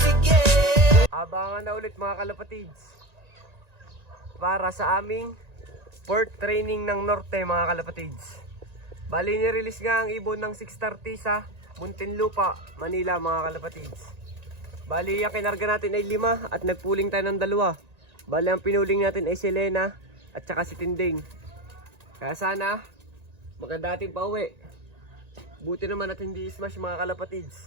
Abangan na ulit mga kalapatids para sa aming port training ng Norte mga kalapatids. Bali ni-release nga ang ibon ng 630 sa Muntinlupa, Manila mga kalapatids. Bali ang kinarga natin ay 5 at nagpuling tayo ng 2. Bali ang pinuling natin ay si Lena at saka si Tinding. Kaya sana maganda ating pauwi. Buti naman at hindi smash mga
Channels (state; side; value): late; left; 1.9 ms